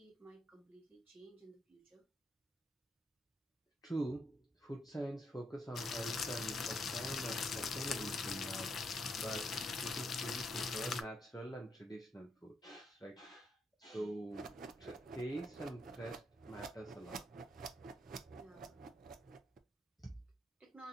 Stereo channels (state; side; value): normal; both; correlation 0.77